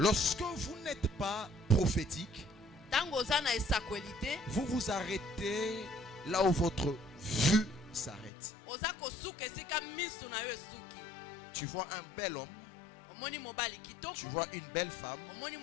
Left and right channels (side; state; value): right; drops out; at 8.3 s